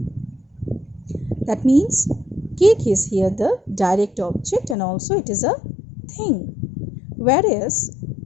That means cake is here the direct object and also it is a thing. Whereas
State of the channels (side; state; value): right; drops out; at 4.8 s